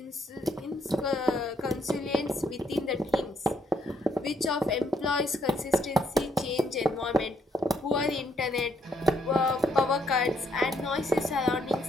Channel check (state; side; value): normal; both; correlation 0.72